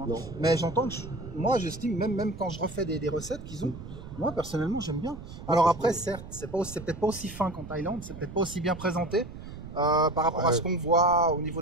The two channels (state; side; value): noise; right; rumble, 13 dB below the sound